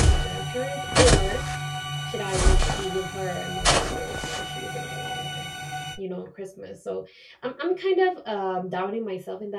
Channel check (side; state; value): both; identical; correlation 1.00